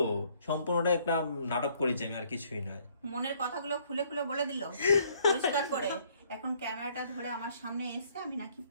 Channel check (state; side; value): inverted; both; correlation -0.64